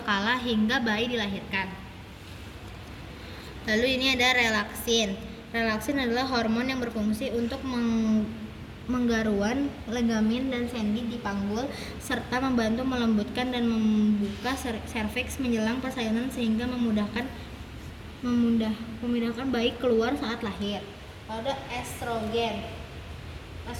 hingga bayi dilahirkan. Lalu ini ada relaksin. Relaksin adalah hormon yang berfungsi untuk menggaruan ligamen dan sendi di panggul serta membantu melembutkan dan membuka serviks menjelang persalinan sehingga memudahkan bayi keluar saat lahir. Lalu ada estrogen.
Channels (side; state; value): both; identical; correlation 1.00